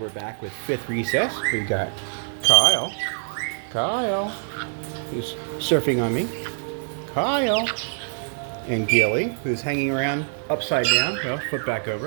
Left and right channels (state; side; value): silent; left; 56 dB below the other